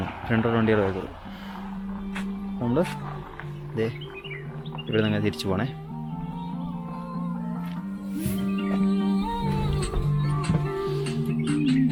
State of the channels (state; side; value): identical; both; correlation 1.00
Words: വണ്ടികളെ വരത്തുള്ളൂ. നമ്മൾ ഇതേ ഇവിടെ നിന്ന് തിരിച്ചു പോകണേ.